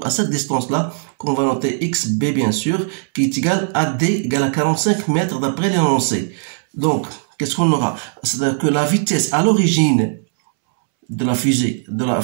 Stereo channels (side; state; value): left; silent; 67 dB below the other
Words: à cette distance-là, qu'on va noter XB bien sûr, qui est égale à D égale à 45 mètres d'après l'énoncé. Donc, qu'est-ce qu'on aura? C'est-à-dire que la vitesse à l'origine de la fusée,